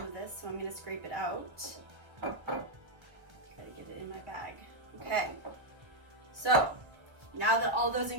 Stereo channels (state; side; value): late; left; 1.9 ms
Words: of this, so I'm gonna scrape it out. Try to get it in my bag. Okay, so now that all those